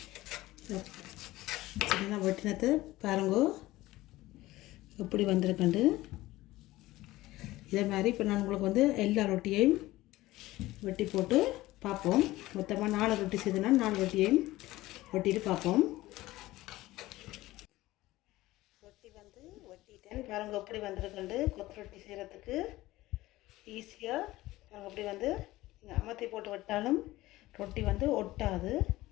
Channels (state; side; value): quieter; right; 17.6 dB